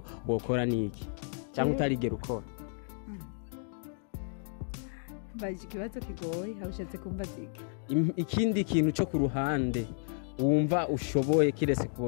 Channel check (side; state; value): right; silent; 56 dB below the other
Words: wokora niki? Cyangwa utarigera ukora? Baje kibazo kigoye, hawushatse kumva ziki. Ikindi kintu cyo ku ruhande wumva ushoboye kirese